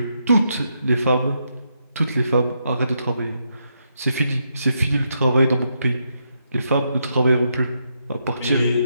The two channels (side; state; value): both; inverted; correlation -0.80